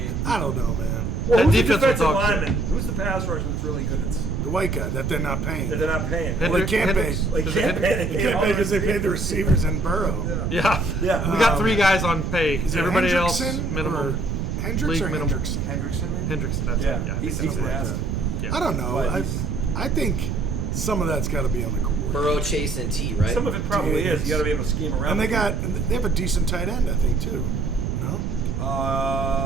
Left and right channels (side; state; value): right; noise; rumble, 2 dB below the sound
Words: I don't know, man. well, That who's the defense will defensive talk to. lineman? Who's the pass rusher that's really good? It's The white guy that they're not paying. that they're not paying. Well, they can't pay. Like Is it can't pay. They can't pay because they paid the receivers and Burrow. Yeah. Yeah. We got 3 guys on pay. Is it Everybody else Hendrickson minimum. or Hendricks League or minimum. Hendrickson? Hendrickson, man. Hendrickson. That's Yeah, it. Yeah. I he's think that's right. nasty. Yeah. I don't know. But I he's- think some of that's got to be on the coordinator. Burrow, Chase, and T, right? Some of it probably is. You got to be able to scheme around. And they with have a decent tight end, I think, too. No?